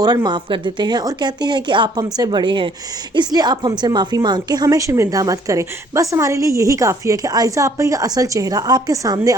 माफ़ कर देते हैं और कहते हैं कि आप हमसे बड़े हैं, इसलिए आप हमसे माफ़ी मांग के हमें शर्मिंदा मत करें। बस हमारे लिए यही काफ़ी है कि आयजा आपका का असल चेहरा आपके सामने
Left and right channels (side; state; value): both; normal; correlation 0.61